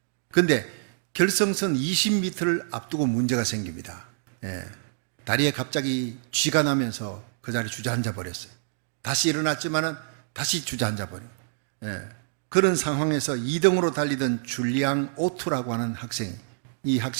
그런데 결승선 20m를 앞두고 문제가 생깁니다. 다리에 갑자기 쥐가 나면서 그 자리에 주저앉아 버렸어요. 다시 일어났지만은 다시 주저앉아 버려요. 그런 상황에서 2등으로 달리던 줄리앙 오투라고 하는 학생, 이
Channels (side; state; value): left; silent; digital silence